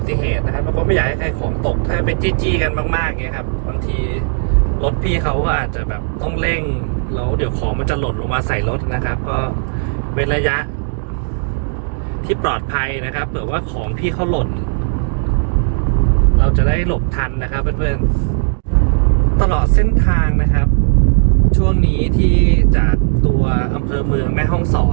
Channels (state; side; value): silent; left; digital silence